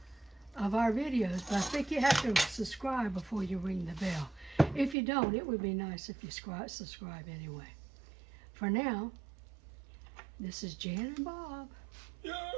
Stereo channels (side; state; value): left; drops out; at 5.0 s